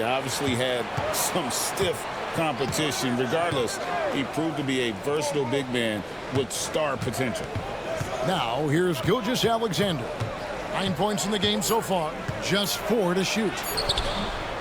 obviously had some stiff competition. Regardless, he proved to be a versatile big man with star potential. Now, here's Gilgeous-Alexander. 9 points in the game so far, just 4 to shoot.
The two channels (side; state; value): both; identical; correlation 1.00